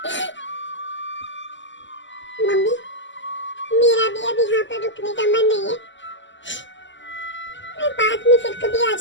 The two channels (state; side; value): late; right; 0.54 ms